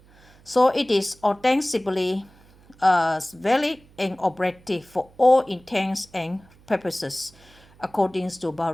So it is ostensibly valid and operative for all intents and purposes, according to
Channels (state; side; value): noise; right; hum, 27 dB below the sound